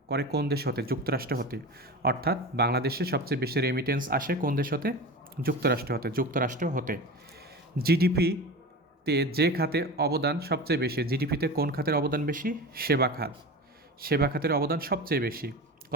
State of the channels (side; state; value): both; normal; correlation 0.29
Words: করে কোন দেশ হতে? যুক্তরাষ্ট্র হতে। অর্থাৎ বাংলাদেশে সবচেয়ে বেশি রেমিটেন্স আসে কোন দেশ হতে? যুক্তরাষ্ট্র হতে। জিডিপিতে যে খাতে অবদান সবচেয়ে বেশি? জিডিপিতে কোন খাতের অবদান বেশি? সেবা খাত। সেবা খাতের অবদান সবচেয়ে বেশি।